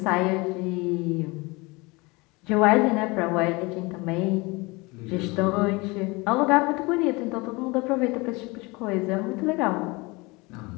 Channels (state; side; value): quieter; right; 25.2 dB